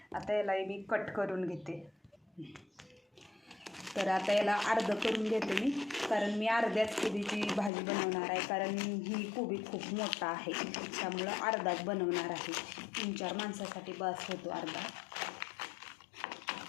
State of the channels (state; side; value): drops out; right; at 7.7 s